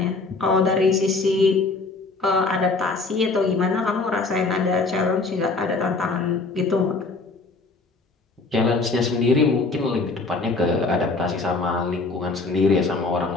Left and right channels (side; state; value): right; quieter; 3.8 dB